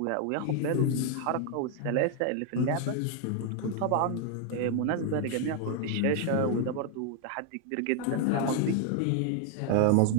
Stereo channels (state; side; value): different; both; correlation 0.00